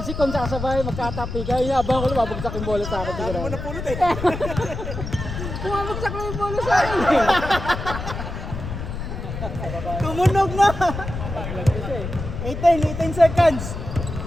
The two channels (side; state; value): left; noise; rumble, 7 dB below the sound